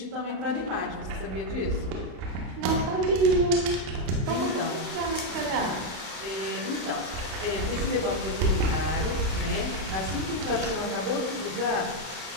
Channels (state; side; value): late; left; 32 ms